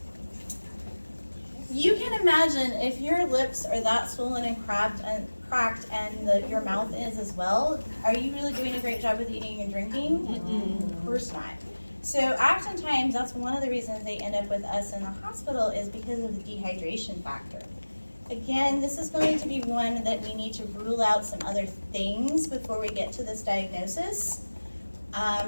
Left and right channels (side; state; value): both; inverted; correlation -1.00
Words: You can imagine if your lips are that swollen and cracked and your mouth is as well, are you really doing a great job with eating and drinking? Of course not. So oftentimes that's one of the reasons they end up with us in the hospital is because of the dehydration factor. Again, this is going to be one that we need to rule out some other things before we get to this diagnosis.